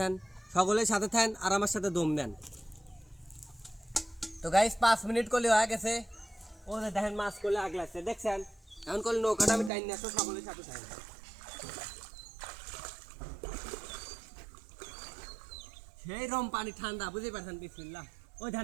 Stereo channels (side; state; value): left; drops out; at 9.7 s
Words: সকলের সাথে থাকেন আর আমার সাথে দম দেন। তো গাইস 5 মিনিট করলে হয়ে গেছে, ও দেখেন মাছ করলে আগ লাগছে দেখছেন। এখন করলে নৌকাটা আমি টাইম নিয়ে আসবো, সকলের সাথে থাকেন। সেই রকম পানি ঠান্ডা, বুঝতে পারছেন? বিসমিল্লাহ। ওই ধান